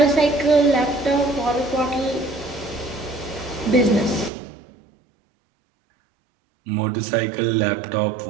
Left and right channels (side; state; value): left; drops out; at 4.3 s